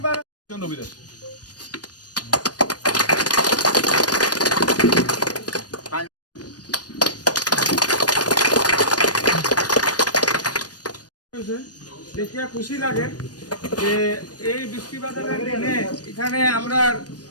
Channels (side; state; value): right; late; 0.69 ms